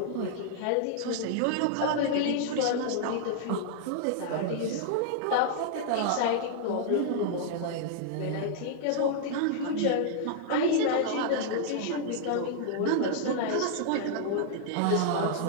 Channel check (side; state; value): both; different; correlation -0.01